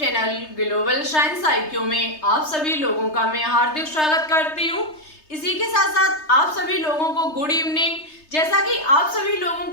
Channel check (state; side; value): late; right; 3.3 ms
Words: global science IQ में आप सभी लोगों का मैं हार्दिक स्वागत करती हूँ। इसी के साथ साथ आप सभी लोगों को गुड इवनिंग। जैसा कि आप सभी लोगों